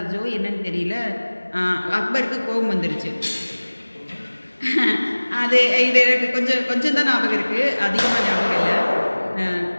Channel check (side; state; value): both; inverted; correlation -1.00